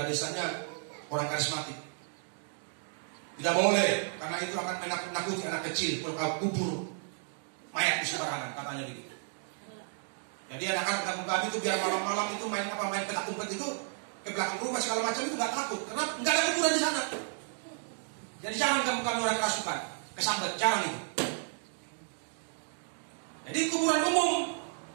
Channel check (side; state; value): left; silent; 56 dB below the other